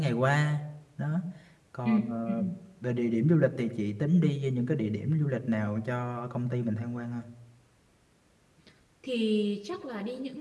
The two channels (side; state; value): both; identical; correlation 1.00